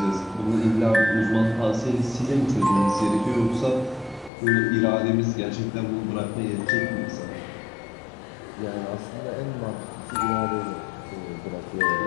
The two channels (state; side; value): drops out; right; at 4.3 s